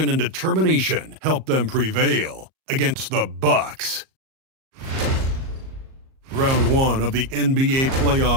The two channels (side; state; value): left; late; 38 ms